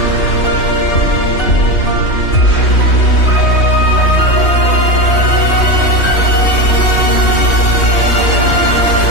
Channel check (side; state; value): right; late; 3.1 ms